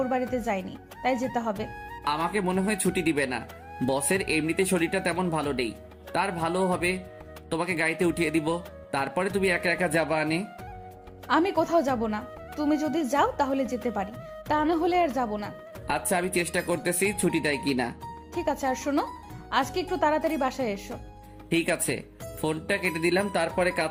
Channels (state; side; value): identical; both; correlation 1.00